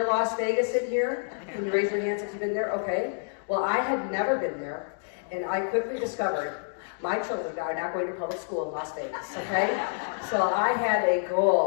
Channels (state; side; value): silent; right; digital silence